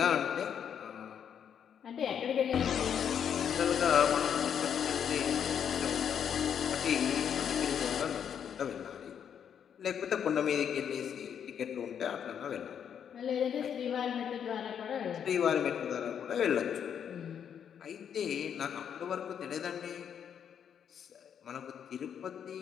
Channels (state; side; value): quieter; right; 8.3 dB